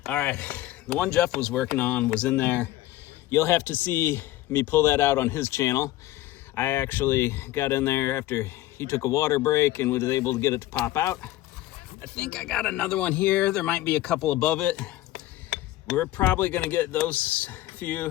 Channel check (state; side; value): quieter; right; 15.8 dB